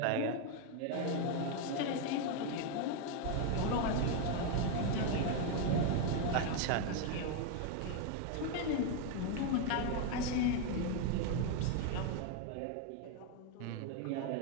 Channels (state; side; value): different; both; correlation 0.01